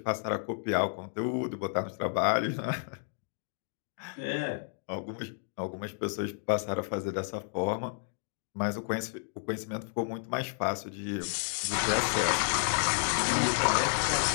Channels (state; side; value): silent; right; digital silence